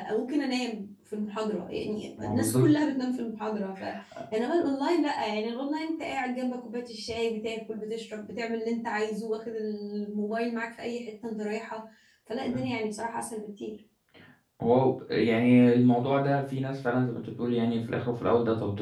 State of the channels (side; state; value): both; identical; correlation 1.00